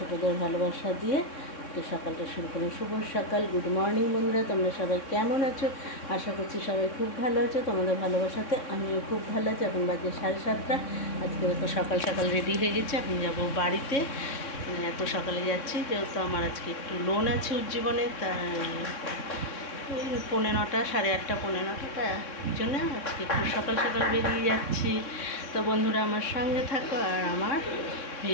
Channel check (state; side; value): late; right; 3.6 ms